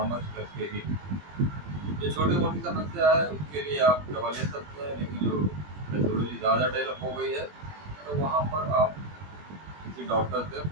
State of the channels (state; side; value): late; left; 21 ms